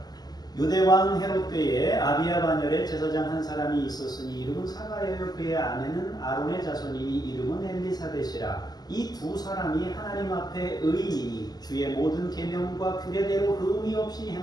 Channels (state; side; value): late; right; 0.20 ms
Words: 유대왕 헤롯 때에 아비야 반열에 제사장 한 사람이 있었으니 이름은 사가랴요 그의 아내는 아론의 자손이니 이름은 엘리사벳이라. 이 두 사람이 하나님 앞에 의인이니 주의 모든 계명과 규례대로 의미 없이